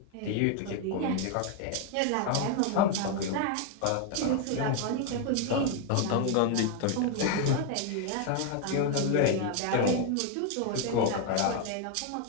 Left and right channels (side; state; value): both; different; correlation 0.01